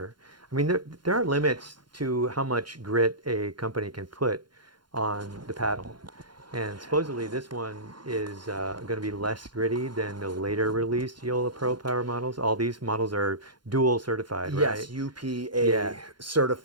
I mean, there are limits to how much grit a company can put on the paddle. And supposedly this one is going to be less gritty than the later released Joola Pro Power models. All these models are dual certified, right? Yes, UPA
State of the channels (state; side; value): late; left; 0.71 ms